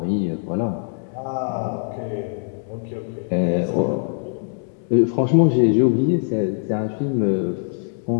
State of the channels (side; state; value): right; silent; digital silence